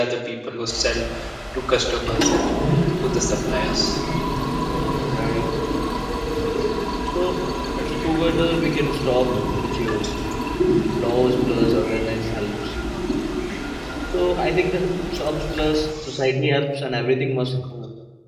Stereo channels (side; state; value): both; identical; correlation 1.00